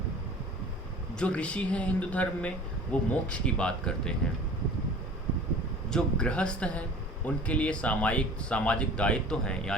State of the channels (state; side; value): normal; both; correlation 0.43